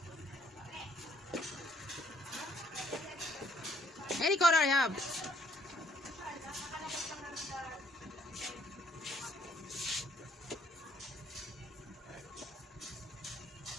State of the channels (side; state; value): both; normal; correlation 0.66